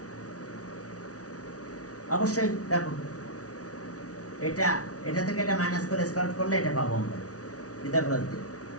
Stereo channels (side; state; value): right; late; 0.67 ms